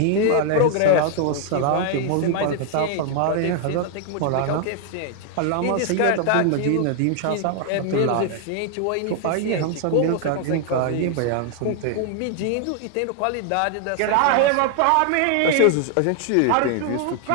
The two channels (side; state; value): both; different; correlation 0.00